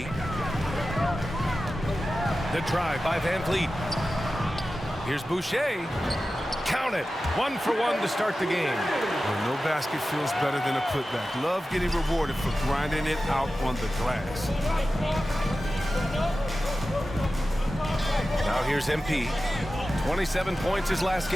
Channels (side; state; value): both; normal; correlation 0.94